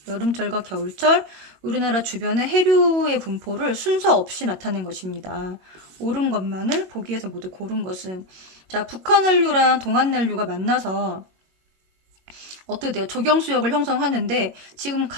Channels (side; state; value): left; late; 21 ms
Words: 여름철과 겨울철 우리나라 주변의 해류의 분포를 순서 없이 나타낸 것입니다. 옳은 것만을 보기에서 모두 고른 것은 자, 북한 한류랑 동한 난류가 만나서 어떻게 돼요? 조경수역을 형성하는데 지금